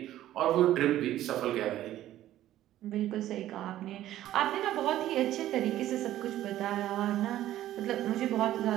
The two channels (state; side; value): quieter; left; 13.4 dB